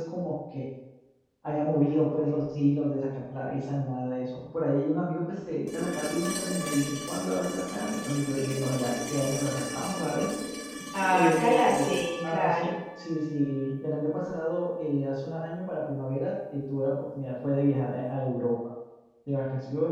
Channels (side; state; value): both; identical; correlation 1.00